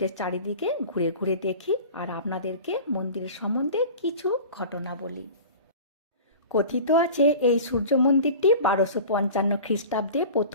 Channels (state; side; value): inverted; both; correlation -0.38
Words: চারিদিকে ঘুরে ঘুরে দেখি আর আপনাদেরকে মন্দিরের সম্বন্ধে কিছু ঘটনা বলি। কথিত আছে এই সূর্য মন্দিরটি 1255 খ্রিস্টাব্দে